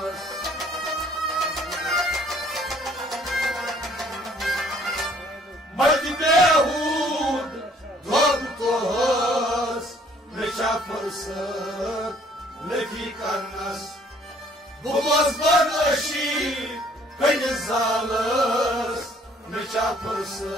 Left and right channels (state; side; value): normal; both; correlation 0.59